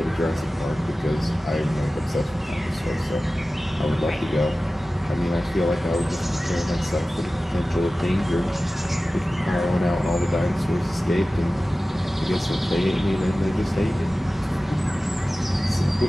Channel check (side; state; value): both; normal; correlation 0.96